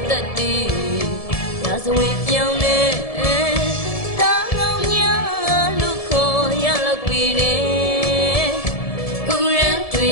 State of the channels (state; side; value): late; right; 1.7 ms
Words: တက်တီရာဇဝင်ပြောင်းနေတာကောင်းများလူခေါ်ရလောက်ပြီးတယ်ကုရန်တွေ